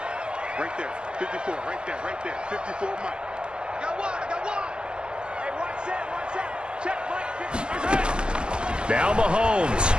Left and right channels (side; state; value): left; late; 0.052 ms